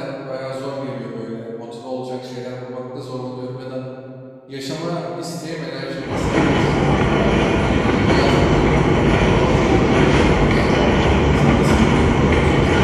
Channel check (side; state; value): both; identical; correlation 1.00